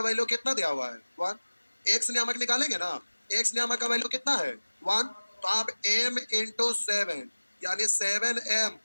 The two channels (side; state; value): both; inverted; correlation -1.00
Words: वैल्यू कितना दिया हुआ है? 1। एक्स नियामक निकालेंगे ना, एक्स नियामक का वैल्यू कितना है? 1। तो आप m इंटू 7 यानी 7m